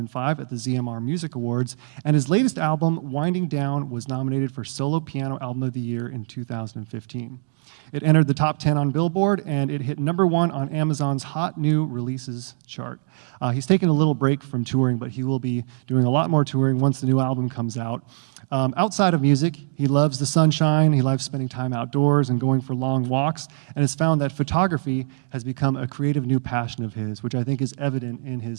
at the ZMR Music Awards, and his latest album, Winding Down, was nominated for Solo Piano Album of the Year in 2015. It entered the top 10 on Billboard, and it hit #1 on Amazon's Hot New Releases chart. He's taken a little break from touring, but he will be doing a lot more touring once the new album comes out. Outside of music, he loves the sunshine, he loves spending time outdoors and going for long walks, and has found that photography has become a creative new passion of his, which I think is evident in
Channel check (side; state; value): left; silent; digital silence